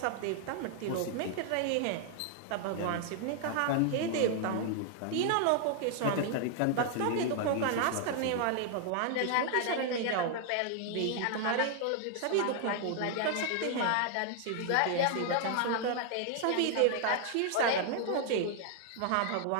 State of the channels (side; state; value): both; different; correlation 0.00